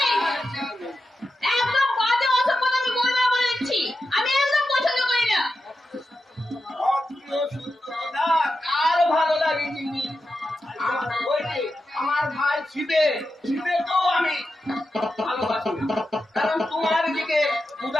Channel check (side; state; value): both; normal; correlation 0.90